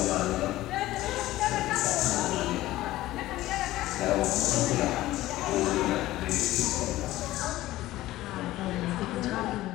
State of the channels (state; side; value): quieter; right; 16.2 dB